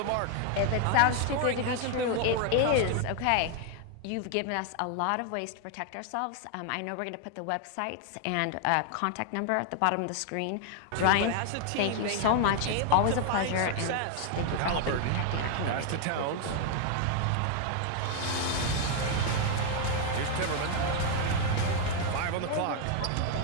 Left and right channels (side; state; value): both; different; correlation 0.00